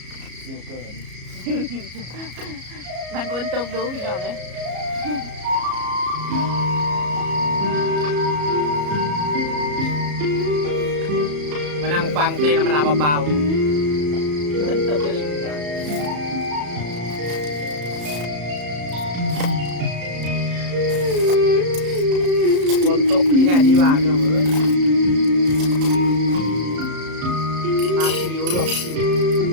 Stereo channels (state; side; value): late; left; 34 ms